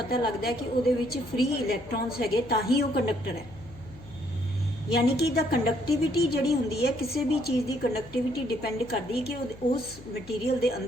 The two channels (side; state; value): left; noise; hum, 20 dB below the sound